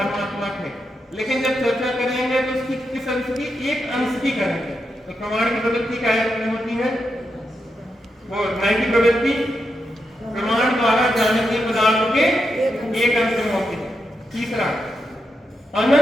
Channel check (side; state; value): both; normal; correlation 0.85